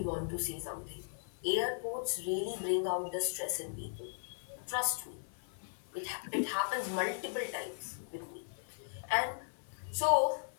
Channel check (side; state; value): right; silent; 53 dB below the other